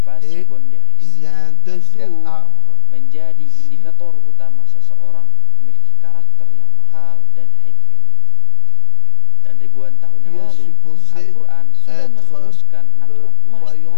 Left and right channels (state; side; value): different; both; correlation 0.00